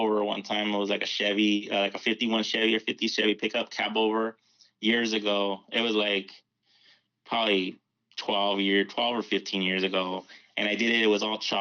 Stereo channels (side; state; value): both; identical; correlation 1.00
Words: one time. It was like a Chevy, like a 51 Chevy or 50 Chevy pickup cab over years ago. It was like probably 12 or 15 years ago. And I did it. It was all